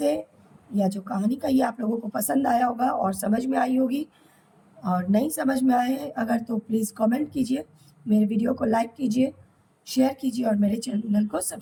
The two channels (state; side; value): identical; both; correlation 1.00